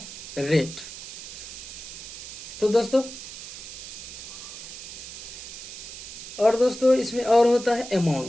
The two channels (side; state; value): right; noise; hiss, 11 dB below the sound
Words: रेट। तो दोस्तों, इसमें और होता है